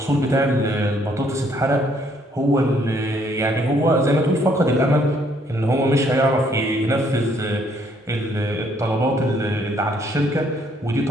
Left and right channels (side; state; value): both; normal; correlation 0.67